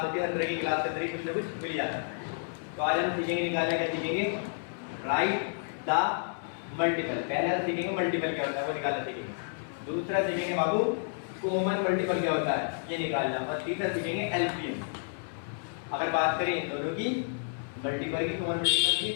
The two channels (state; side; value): silent; right; 57 dB below the other